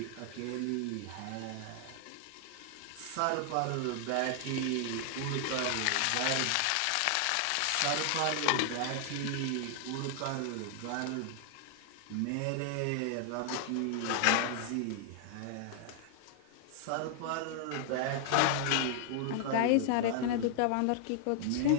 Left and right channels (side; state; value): both; different; correlation 0.00